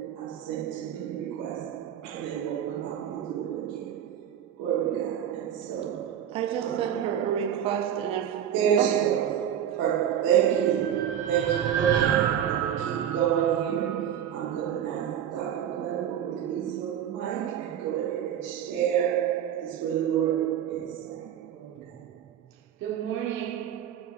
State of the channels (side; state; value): left; quieter; 9.7 dB